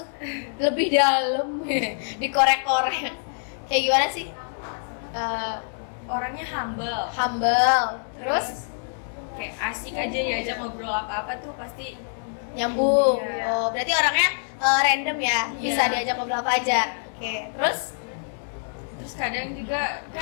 Lebih dalam, dikorek-korek. Kayak gimana sih? Orangnya humble. Humble, terus Kayak asik aja diajak ngobrol apa-apa tuh pasti nyambung. Iya. Oh, berarti orangnya random ya, bisa Iya. diajak ngobrol apa aja. Oke, terus kadang juga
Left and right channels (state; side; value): silent; right; digital silence